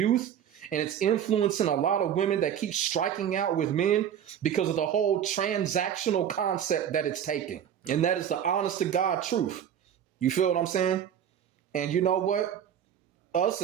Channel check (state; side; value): quieter; left; 9.3 dB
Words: and it's influencing a lot of women that keep striking out with men because of the whole transactional concept that it's taking. And that is the honest to God truth. You feel what I'm saying? And you know what? Us